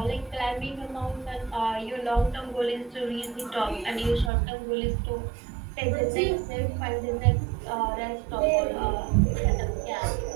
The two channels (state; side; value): drops out; left; at 4.3 s